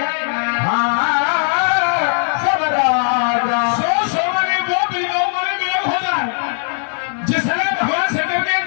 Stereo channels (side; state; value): right; silent; 56 dB below the other